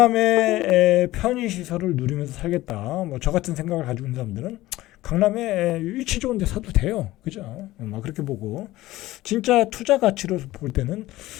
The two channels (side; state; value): right; quieter; 17.0 dB